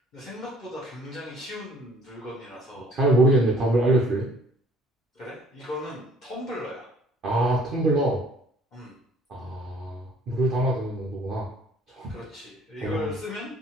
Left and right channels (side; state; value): both; normal; correlation 0.57